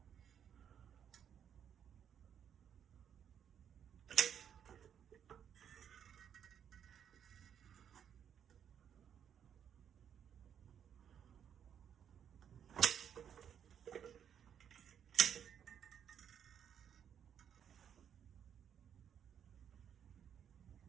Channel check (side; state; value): left; quieter; 8.6 dB